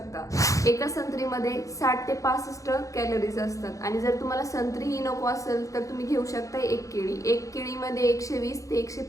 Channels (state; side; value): late; right; 0.16 ms